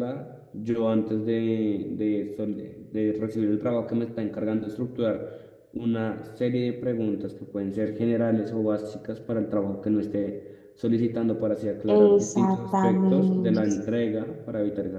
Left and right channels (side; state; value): both; identical; correlation 1.00